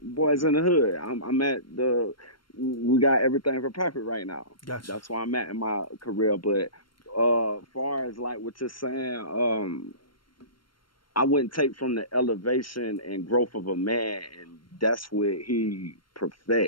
Boys in the Hood. I'm at the we got everything for profit right now. Gotcha. That's where I'm at in my career. But far as like what you're saying, I wouldn't take from the elevation and growth of a man, and that's what he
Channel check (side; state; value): right; late; 0.72 ms